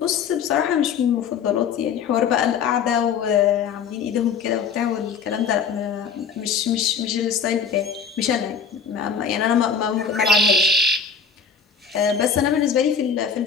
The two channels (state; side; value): quieter; right; 6.4 dB